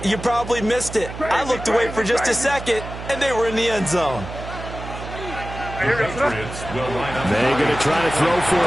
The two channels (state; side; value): noise; right; hum, 10 dB below the sound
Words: you probably missed it. I looked away for just a second, and they were in the end zone. The Patriots will line up. They're going to try to throw for